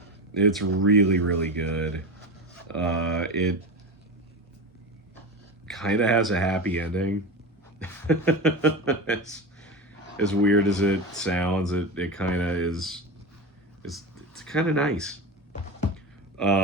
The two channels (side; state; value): both; normal; correlation 0.23